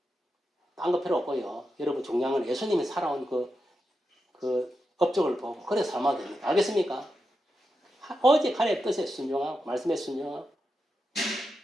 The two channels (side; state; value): both; normal; correlation 0.87